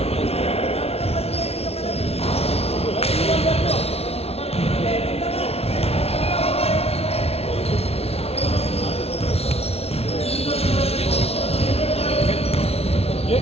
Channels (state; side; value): late; right; 0.30 ms